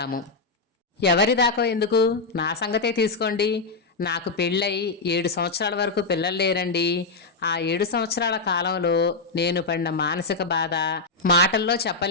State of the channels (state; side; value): quieter; right; 3.8 dB